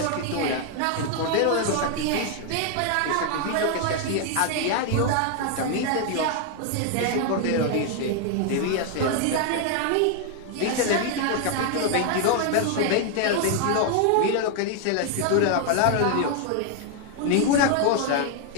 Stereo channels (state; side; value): different; both; correlation 0.00